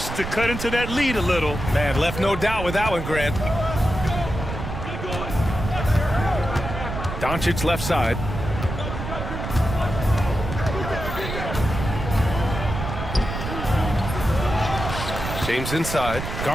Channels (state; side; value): noise; right; rumble, 6 dB below the sound